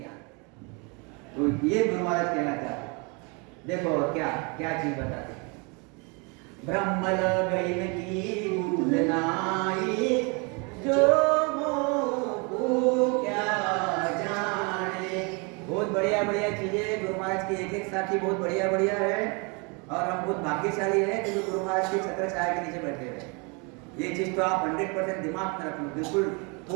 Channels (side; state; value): left; quieter; 31.9 dB